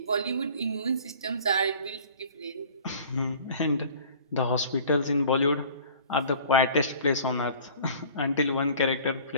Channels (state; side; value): inverted; both; correlation -0.47